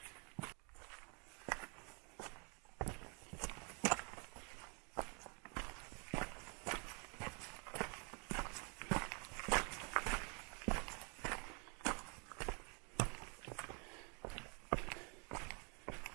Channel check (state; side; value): quieter; left; 35.3 dB